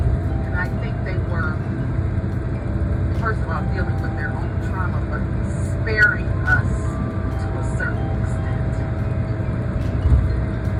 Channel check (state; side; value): identical; both; correlation 1.00